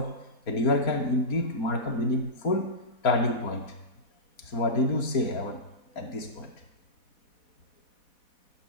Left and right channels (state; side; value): late; right; 4.1 ms